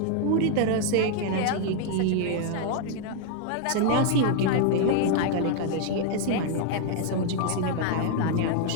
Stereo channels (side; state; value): both; different; correlation 0.00